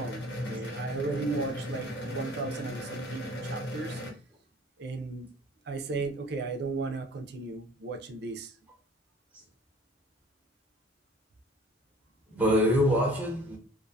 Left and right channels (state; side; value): normal; both; correlation 0.50